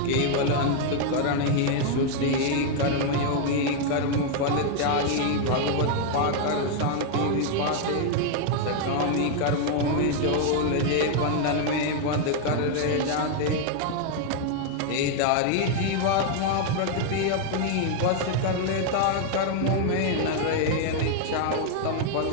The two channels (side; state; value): both; different; correlation 0.00